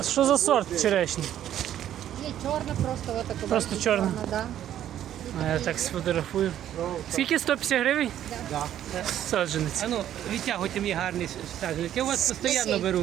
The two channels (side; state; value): left; quieter; 11.3 dB